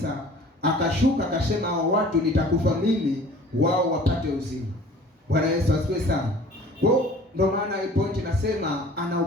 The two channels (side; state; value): both; normal; correlation 0.48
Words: akashuka akasema, hao watu nitakufa mimi, wao wapate uzima. Bwana Yesu asifiwe sana. Kwa ndio maana hii point nasema ana